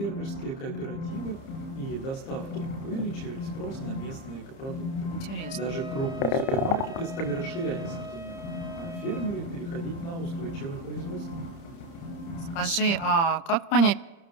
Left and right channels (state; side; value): late; right; 30 ms